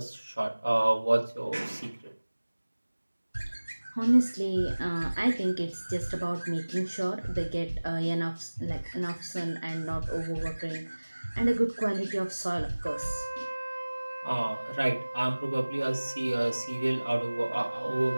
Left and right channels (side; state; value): both; inverted; correlation -1.00